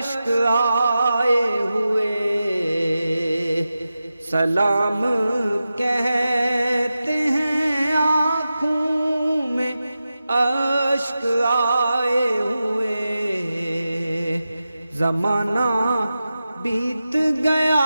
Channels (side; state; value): both; inverted; correlation -0.93